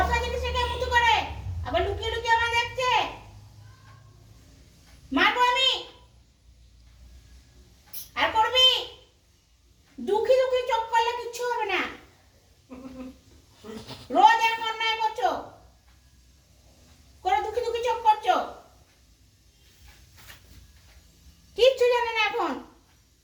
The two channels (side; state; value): both; identical; correlation 1.00